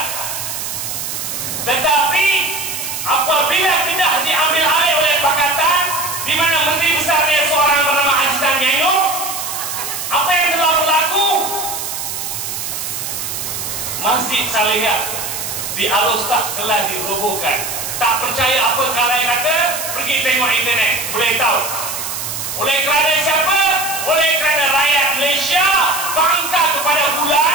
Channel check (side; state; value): right; noise; hiss, 5 dB below the sound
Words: Tetapi apabila Kedah diambil alih oleh Pakatan, di mana Menteri Besarnya seorang bernama Azizan Nyayong, apa yang telah berlaku? Masjid Salihah di Alostak telah dirobohkan. Tak percaya apa kalai kata, pergi tengok internet, boleh tahu. Oleh kerana siapa? Oleh kerana rakyat Malaysia bangga kepada